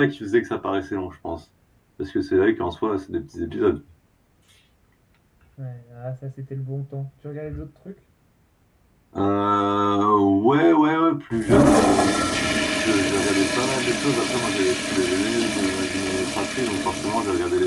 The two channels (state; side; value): identical; both; correlation 1.00